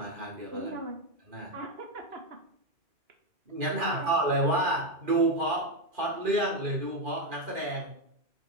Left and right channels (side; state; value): left; late; 2.4 ms